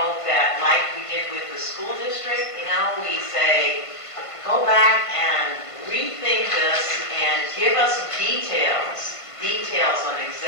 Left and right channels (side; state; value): right; late; 1.5 ms